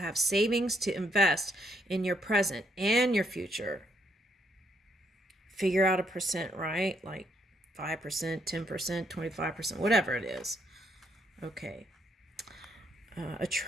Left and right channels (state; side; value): normal; both; correlation 0.73